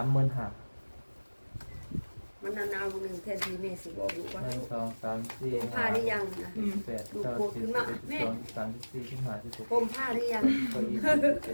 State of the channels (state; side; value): inverted; both; correlation -1.00